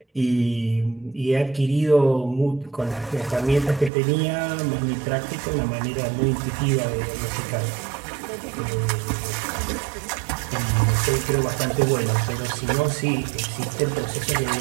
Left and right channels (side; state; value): left; drops out; at 3.9 s